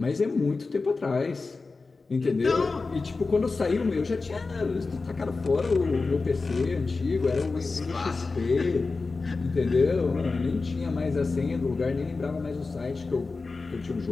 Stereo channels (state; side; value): quieter; right; 4.0 dB